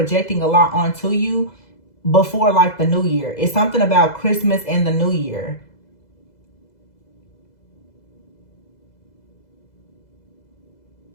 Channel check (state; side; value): late; right; 2.0 ms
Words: a lot onto you before like the new year. It's something about Christmas and the new year.